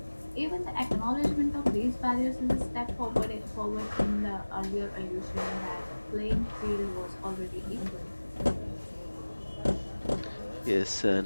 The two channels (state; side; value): inverted; both; correlation -1.00